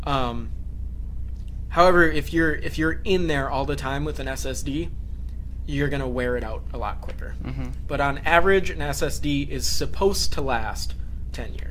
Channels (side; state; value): both; identical; correlation 1.00